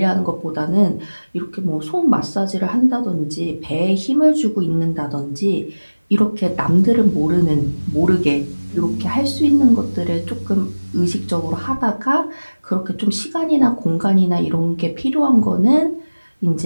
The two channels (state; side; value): inverted; both; correlation -1.00